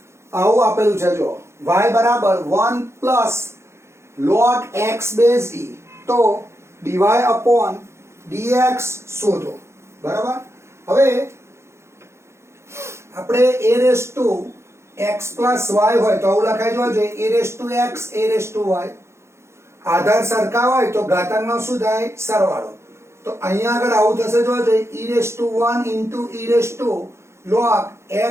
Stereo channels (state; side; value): late; left; 0.13 ms